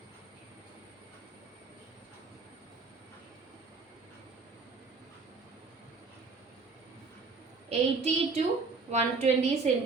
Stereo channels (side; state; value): left; quieter; 4.3 dB